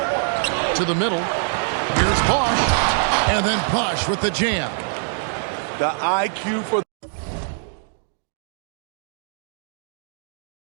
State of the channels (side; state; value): left; silent; digital silence